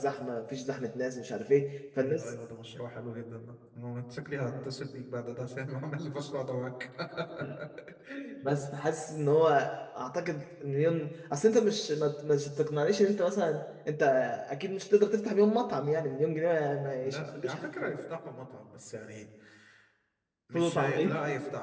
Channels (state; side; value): identical; both; correlation 1.00